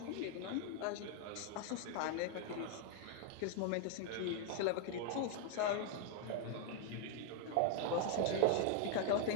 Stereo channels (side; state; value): both; different; correlation 0.00